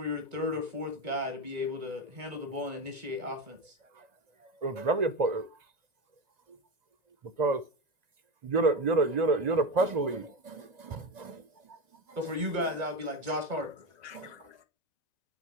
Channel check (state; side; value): late; left; 1.9 ms